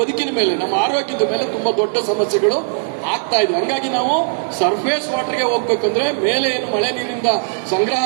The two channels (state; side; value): silent; left; digital silence